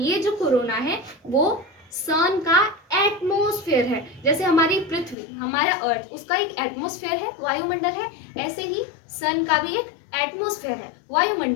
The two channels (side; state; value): right; drops out; at 5.2 s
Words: जो कोरोना है वो सन का एटमॉस्फेयर है। जैसे हमारी पृथ्वी, हमारा अर्थ, उसका एक एटमॉस्फेयर है, वायुमंडल है, ऐसे ही सन का भी एक एटमॉस्फेयर है,